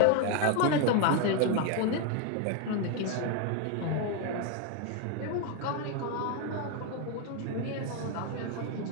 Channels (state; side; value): different; both; correlation 0.01